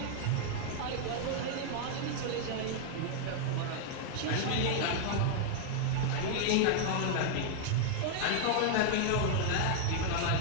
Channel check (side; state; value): both; different; correlation 0.00